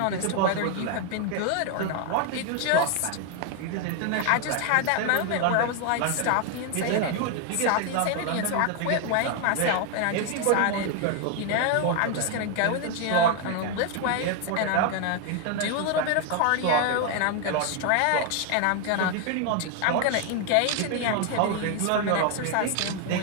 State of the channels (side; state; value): both; different; correlation 0.01